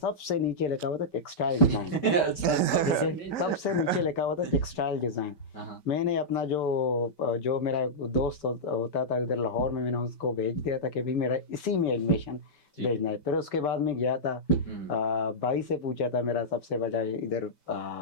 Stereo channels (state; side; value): late; right; 5.2 ms